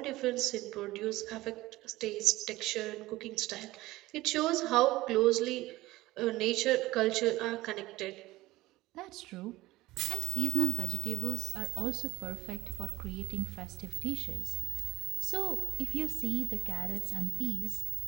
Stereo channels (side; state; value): left; quieter; 18.2 dB